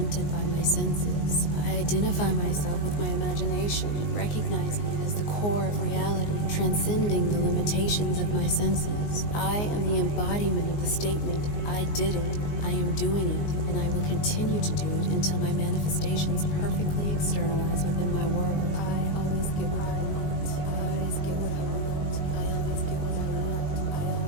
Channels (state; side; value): late; right; 19 ms